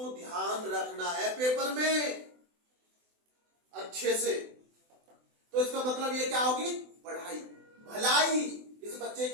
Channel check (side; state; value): left; late; 24 ms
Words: ध्यान रखना है पेपर में अच्छे से। तो इसका मतलब ये क्या होगी, पढ़ाई, भलाई। इस बच्चे